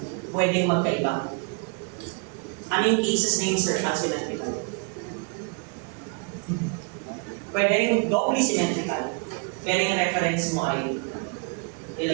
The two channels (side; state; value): left; quieter; 36.0 dB